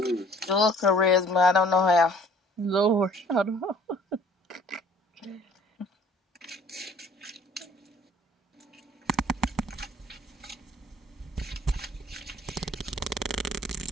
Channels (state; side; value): normal; both; correlation 0.54